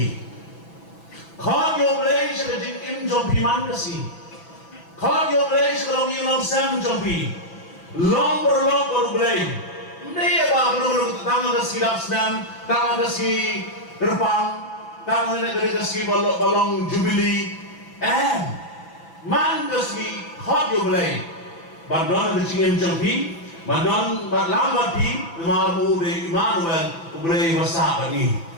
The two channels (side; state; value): right; late; 6.0 ms